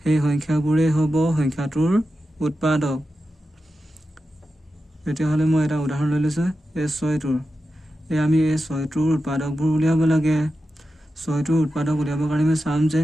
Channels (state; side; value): normal; both; correlation 0.91